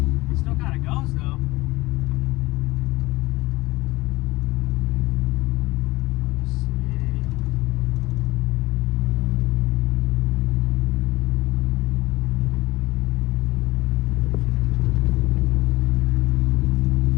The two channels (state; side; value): quieter; right; 20.4 dB